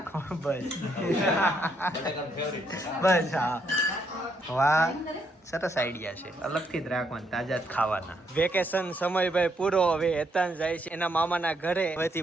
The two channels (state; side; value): normal; both; correlation 0.75